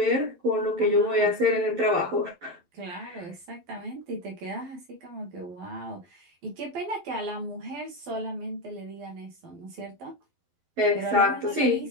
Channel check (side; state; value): left; late; 12 ms